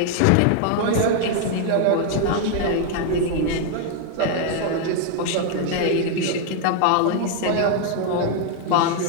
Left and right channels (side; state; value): both; different; correlation 0.00